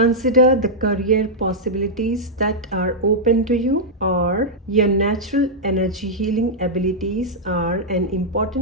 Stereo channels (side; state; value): both; normal; correlation -0.07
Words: the career possibilities that are open to you और your natural energy healing abilities are an